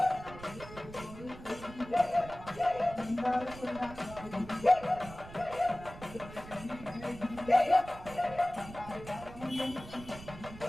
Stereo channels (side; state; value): right; noise; rumble, 15 dB below the sound